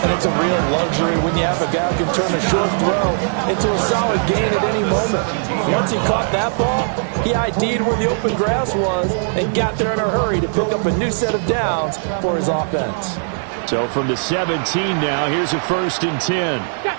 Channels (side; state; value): left; silent; 57 dB below the other